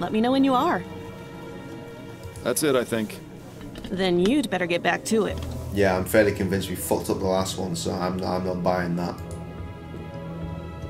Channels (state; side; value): identical; both; correlation 1.00